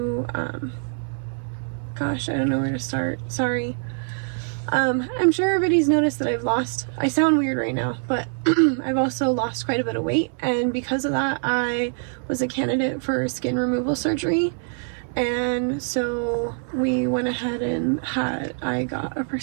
gosh, I don't know where to start. Sorry. I'm sure everybody's noticed that I sound weird right now, but I've also lost quite a bit of weight, and because of that, I was a candidate for skin removal surgery. And so we went ahead and I got a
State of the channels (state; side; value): silent; left; 60 dB below the other